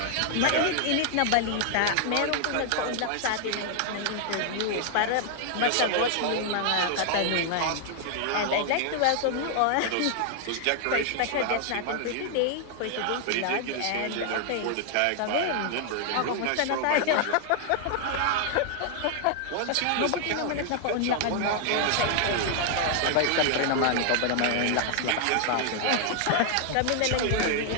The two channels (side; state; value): both; different; correlation 0.00